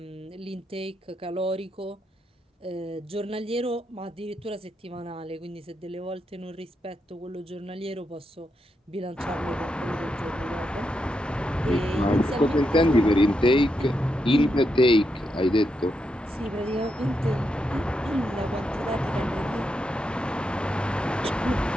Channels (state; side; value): normal; both; correlation 0.83